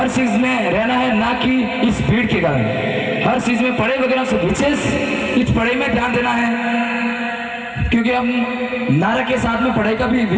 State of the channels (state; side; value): identical; both; correlation 1.00